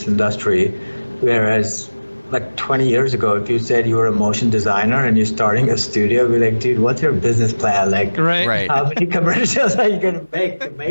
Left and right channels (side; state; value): both; inverted; correlation -1.00